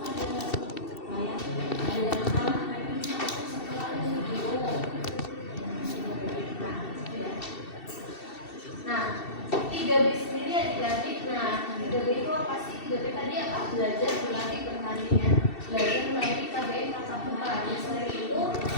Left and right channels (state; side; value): late; right; 2.7 ms